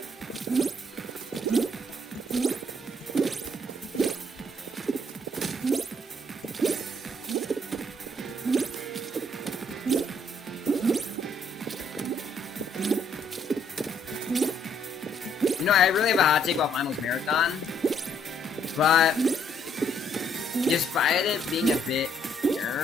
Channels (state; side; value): normal; both; correlation 0.68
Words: You know, I really have a hot take about Finals Marathon, but despite it being a bit